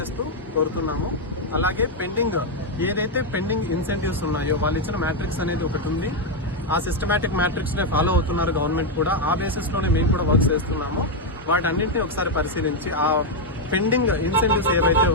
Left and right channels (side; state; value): both; normal; correlation 0.02